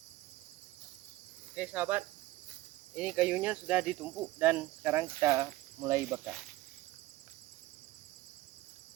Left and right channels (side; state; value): left; quieter; 17.5 dB